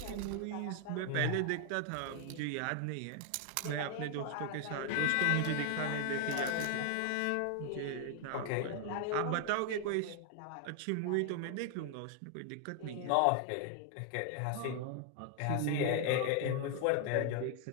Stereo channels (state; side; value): different; both; correlation 0.00